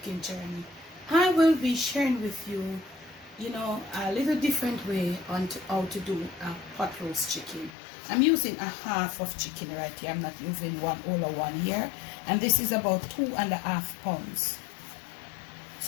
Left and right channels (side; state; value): right; drops out; at 7.7 s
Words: Journey, I will be sharing with you, a little different way on how to do a pot roast chicken. I'm using a half of chicken right here. I'm not using all of one here. And this is about 2.5 pounds.